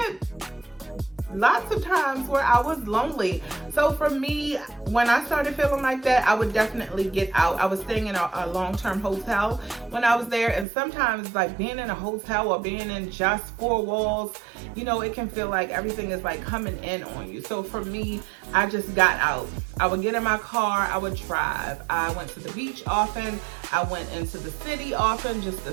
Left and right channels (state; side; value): drops out; left; at 10.7 s